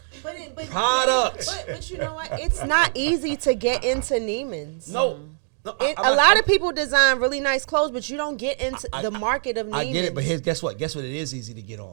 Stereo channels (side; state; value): left; silent; digital silence